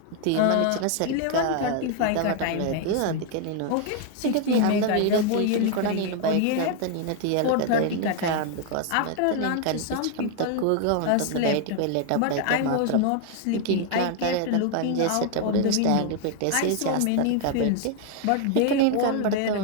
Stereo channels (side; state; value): both; different; correlation 0.00